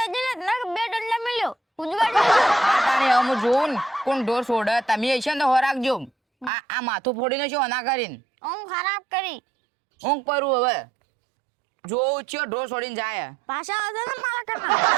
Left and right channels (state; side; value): drops out; left; at 6.5 s